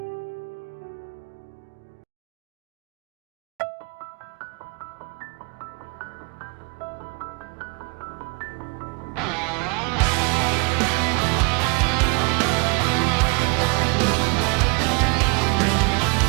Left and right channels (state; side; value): quieter; left; 30.8 dB